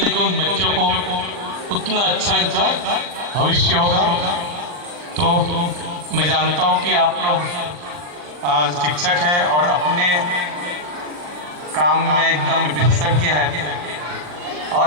बच्चों को उतना अच्छा इनका भविष्य होगा। तो मैं जानता हूँ कि आप लोग शिक्षक हैं और अपने काम में एकदम विशेषज्ञ हैं और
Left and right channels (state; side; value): late; left; 40 ms